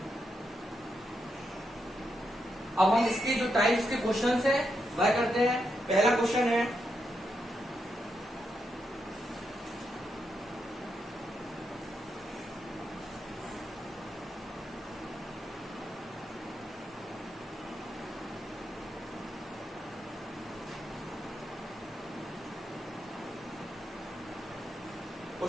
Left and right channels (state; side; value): normal; both; correlation 0.83